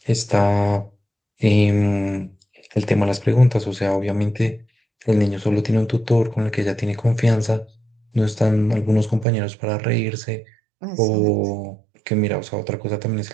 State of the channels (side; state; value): left; drops out; at 9.2 s